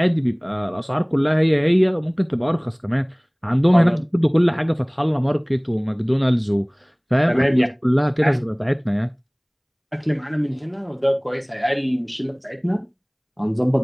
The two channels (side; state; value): both; identical; correlation 1.00